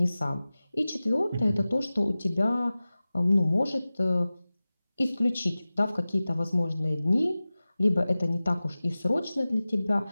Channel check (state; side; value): inverted; both; correlation -0.97